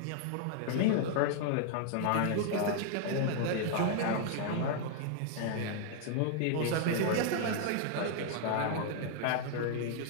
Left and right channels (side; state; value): both; different; correlation 0.00